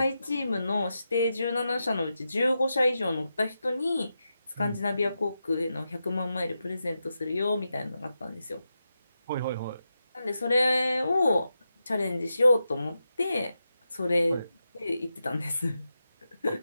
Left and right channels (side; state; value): both; inverted; correlation -0.88